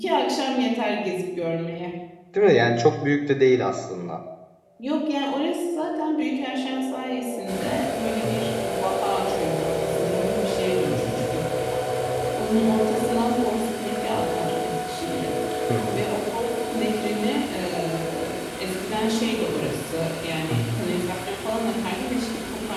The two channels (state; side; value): identical; both; correlation 1.00